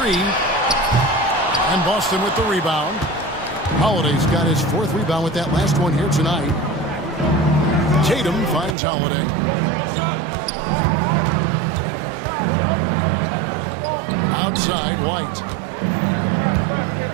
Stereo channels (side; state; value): left; drops out; at 8.8 s